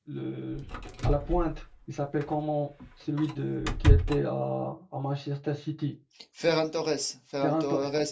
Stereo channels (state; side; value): identical; both; correlation 1.00